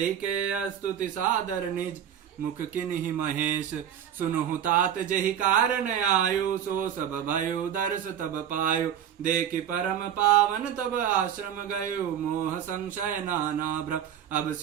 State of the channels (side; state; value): left; quieter; 9.5 dB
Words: के स्तुति सादर निज मुख किन्हि महेश। सुनहु तात जहि कारण आयु सो सब भयो दर्श तब पायो। देखि परम पावन तब आश्रम गयो मोह संशय नाना भ्रम। अब